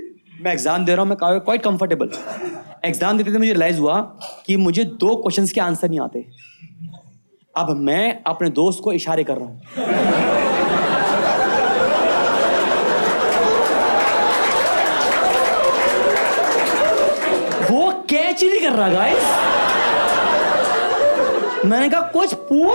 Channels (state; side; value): inverted; both; correlation -1.00